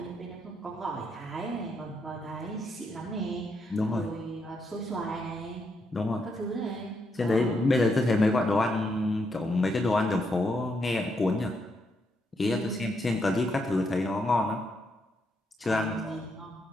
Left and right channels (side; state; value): both; normal; correlation 0.79